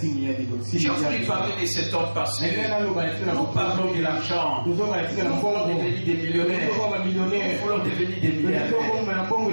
envie de parler de cet homme parce que nous parlons de l'argent. Nous voulons devenir des millionnaires. Nous voulons devenir des milliardaires.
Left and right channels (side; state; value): both; inverted; correlation -1.00